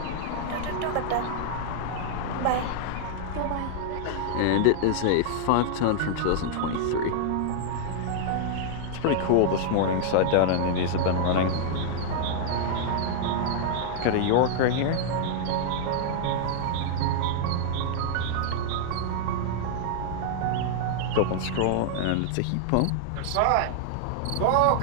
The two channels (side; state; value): both; different; correlation -0.01